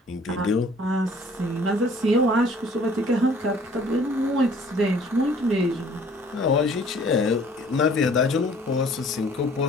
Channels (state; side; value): normal; both; correlation 0.55